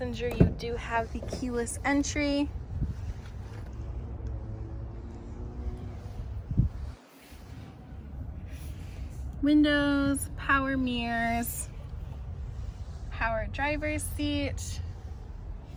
you do have the keyless entry. Windows, power mirrors, power driver's seat.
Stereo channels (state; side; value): identical; both; correlation 1.00